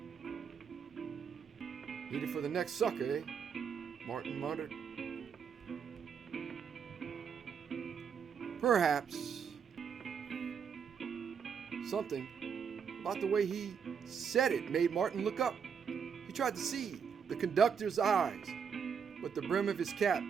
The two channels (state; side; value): quieter; left; 6.9 dB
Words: "Need it for the next sucker, eh?" Martin muttered. "Perhaps." Something about the way he said it made Martin look up. He tried to see the conductor's eyes, but the brim of his cap